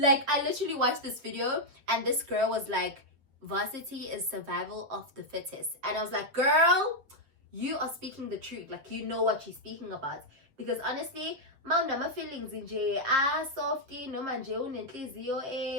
I literally watched this video and this girl was like, Varsity is survival of the fittest. And I was like, girl, you are speaking the truth. Like, you know what you're speaking about. Because honestly, my feelings in softy, no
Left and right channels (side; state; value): left; late; 7.3 ms